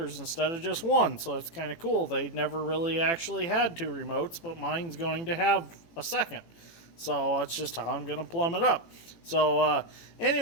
instead of just 1. So it's kind of cool. They never really actually had 2 remotes, but mine's going to have a second. So that's just how I'm going to plumb it up. So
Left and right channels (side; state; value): right; late; 18 ms